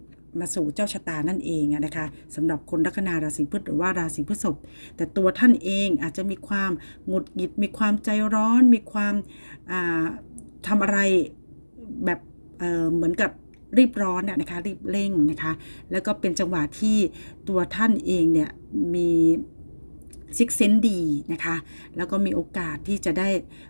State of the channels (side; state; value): both; inverted; correlation -1.00